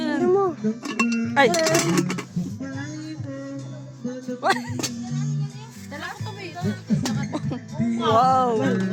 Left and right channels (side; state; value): both; identical; correlation 1.00